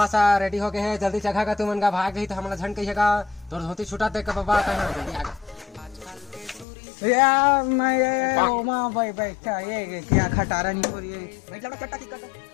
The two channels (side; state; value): right; drops out; at 6.7 s